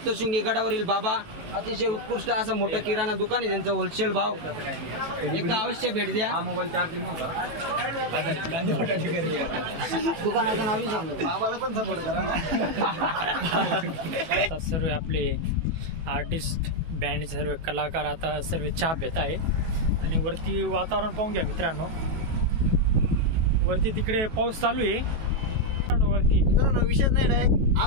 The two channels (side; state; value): left; late; 18 ms